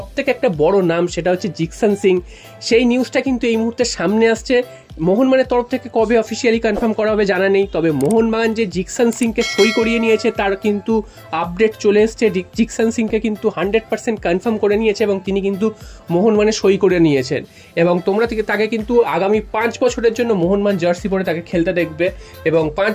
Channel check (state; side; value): identical; both; correlation 1.00